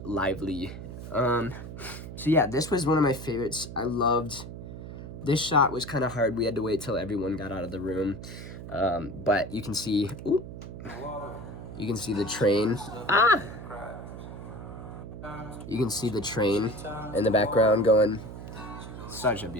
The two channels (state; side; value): noise; right; hum, 10 dB below the sound